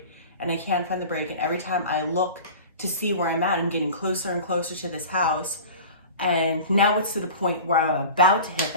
and I can't find the brake. And every time I look to see where I'm at, I'm getting closer and closer to this house. And now it's to the point where I'm about to hit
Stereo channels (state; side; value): inverted; both; correlation -0.37